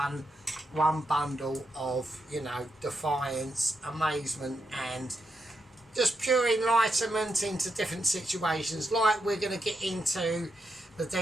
bundle of, you know, defiance, amazement and just pure enlightenment into different situations. Like, we're going to get into the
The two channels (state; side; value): normal; both; correlation 0.84